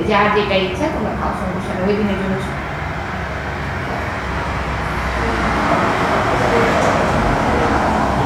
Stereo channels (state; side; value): identical; both; correlation 1.00